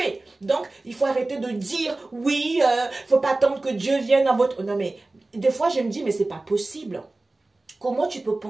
Donc, il faut arrêter de dire, oui, faut pas attendre que Dieu vienne dans votre... Non, mais des fois, je me dis, mais c'est pas possible. Comment tu peux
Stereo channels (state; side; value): quieter; left; 3.0 dB